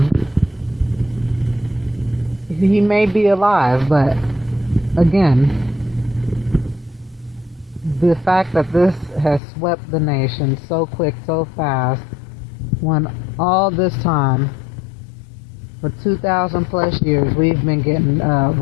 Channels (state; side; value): drops out; right; at 9.4 s